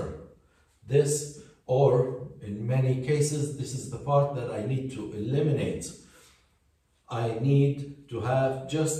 This, or in many cases, this is the part that I need to eliminate. I need to have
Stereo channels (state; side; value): identical; both; correlation 1.00